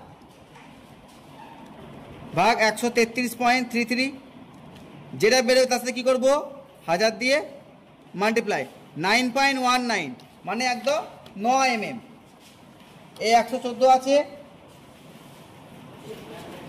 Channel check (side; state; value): both; identical; correlation 1.00